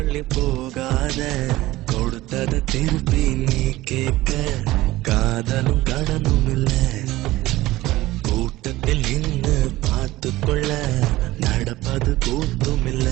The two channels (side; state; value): left; quieter; 17.6 dB